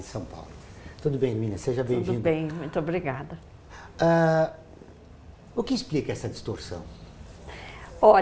São Paulo. Tudo bem, Hermínia? Seja bem-vinda. Tudo bem, muito obrigada. O que explica essa distorção?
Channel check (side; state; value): both; identical; correlation 1.00